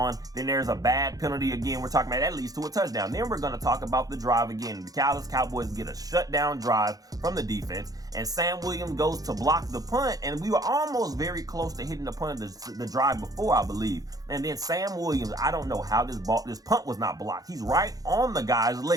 Then there's a bad penalty again. We're talking about that leads to a touchdown. Then we're going to talk about the drive again. The Dallas Cowboys get a shutdown drive from the defense, and Sam Williams goes to block the punt, and we were almost very close to hitting the punt of the drive before, I believe. And then Sam Williams, I don't know how this punt was not blocked. He's right on the guy's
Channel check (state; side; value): late; left; 0.18 ms